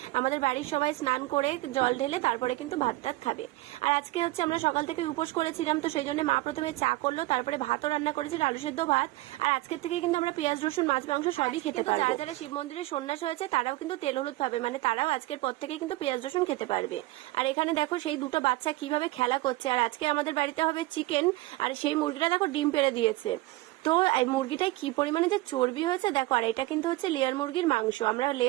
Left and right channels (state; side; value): quieter; left; 19.1 dB